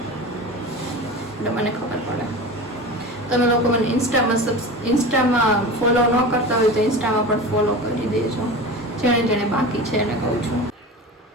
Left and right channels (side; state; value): both; normal; correlation 0.31